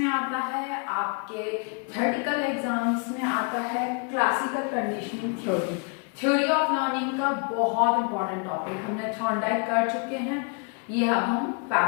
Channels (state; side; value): quieter; right; 36.5 dB